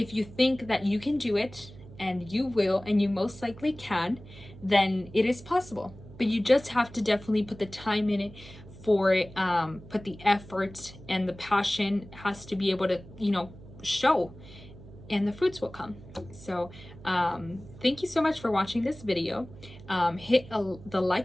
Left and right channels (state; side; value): noise; right; hum, 18 dB below the sound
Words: you think that you can do it, and you will, and you most likely can, then it is possible. But you just have to definitely put the time in it for it, put the effort, and the passion has to be able to, show, and the fruits will come. So thank you so much for watching this video. Hit the